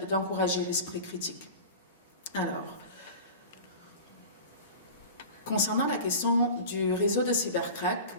l'esprit critique. Alors, concernant la question du réseau de cybercrack,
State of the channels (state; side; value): inverted; both; correlation -0.35